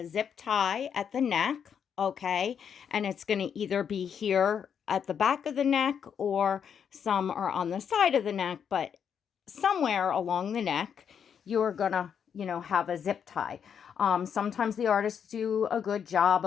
zip tie at the neck, okay? And it's going to either be here at the back of the neck or some are on the side of the neck, but somewhere along the neck, you're going to, have a zip tie. Sometimes the artists do a good job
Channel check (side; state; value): right; quieter; 7.7 dB